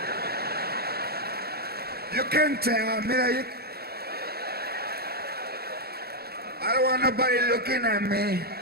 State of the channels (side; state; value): left; late; 0.46 ms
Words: You can tell, mira, I don't want nobody looking at me.